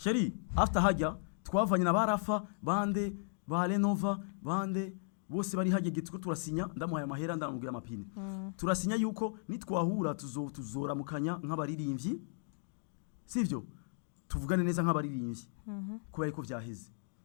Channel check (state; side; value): silent; right; digital silence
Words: after hajya twavanye na barafa bande ba Renova bande bose bari hajye gitwe turasinya ndamuhaye amahera ndamubwira amapine turasinya yuko nitwahura tuzoramukanya nk'abaririmbyi sivyo tuvugane neza nk'abaririmbyi kubera ko vyaheze